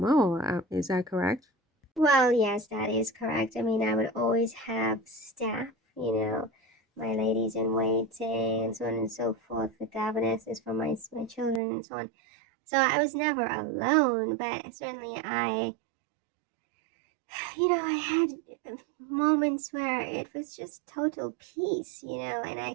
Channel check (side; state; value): left; drops out; at 11.6 s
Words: Is that correct? Well, yes, that is correct. I mean, I would always have staff, my ladies in waiting and so on and so forth, the governesses for my children and so on. So I was never alone, but certainly I had moments where it was just total peace, and